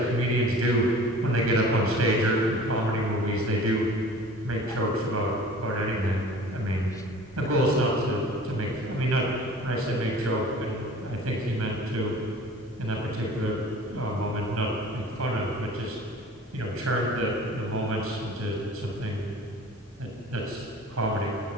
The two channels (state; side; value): normal; both; correlation 0.44